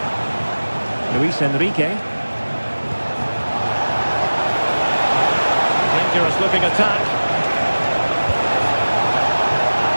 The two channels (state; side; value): inverted; both; correlation -1.00